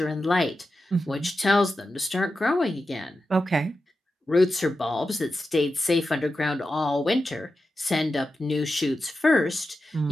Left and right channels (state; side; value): normal; both; correlation 0.91